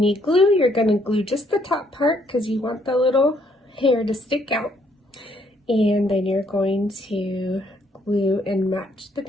you glue, you're going to glue just the top part because you want the little hair to stick out. And then you're going to glue and match the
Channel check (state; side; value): normal; both; correlation 0.69